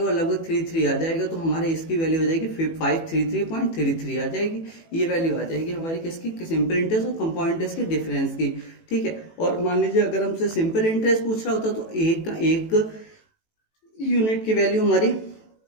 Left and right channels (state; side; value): late; right; 18 ms